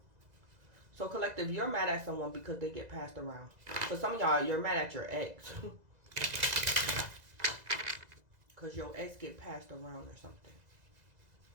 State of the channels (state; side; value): late; left; 2.0 ms